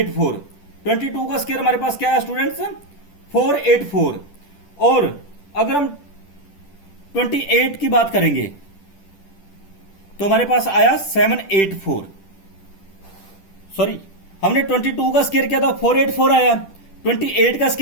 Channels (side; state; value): right; late; 10 ms